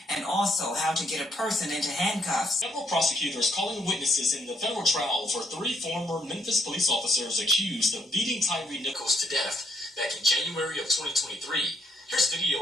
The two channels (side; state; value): both; normal; correlation 0.72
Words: and also how to get a person into handcuffs. Several prosecutors calling witnesses in the federal trial for 3 former Memphis police officers accused of beating Tyre Nichols to death back in January of 2023. Here's